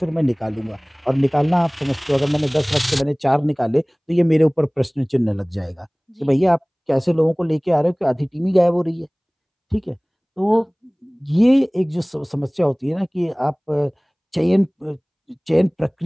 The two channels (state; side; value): identical; both; correlation 1.00